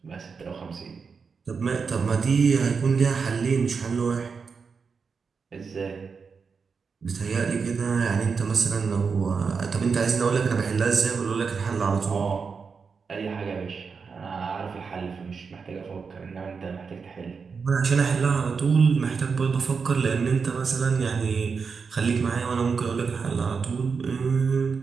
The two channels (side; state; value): left; quieter; 5.4 dB